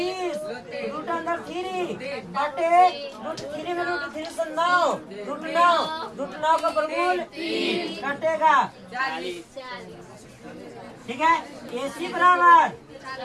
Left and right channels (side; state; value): both; identical; correlation 1.00